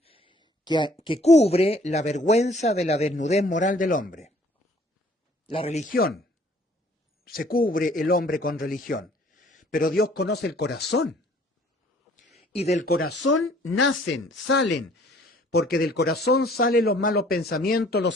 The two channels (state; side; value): normal; both; correlation 0.57